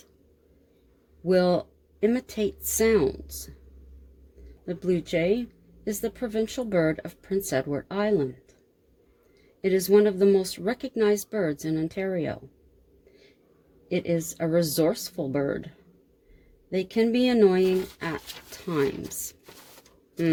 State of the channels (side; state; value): both; identical; correlation 1.00